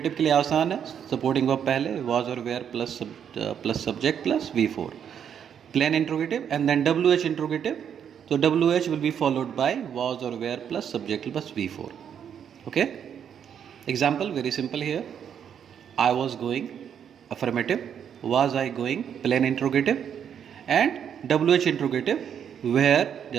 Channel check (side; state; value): left; quieter; 8.4 dB